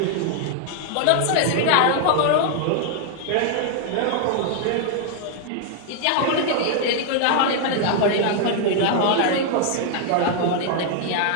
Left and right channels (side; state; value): both; different; correlation 0.00